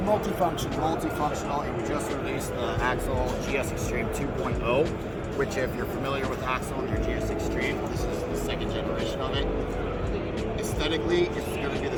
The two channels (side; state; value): both; identical; correlation 1.00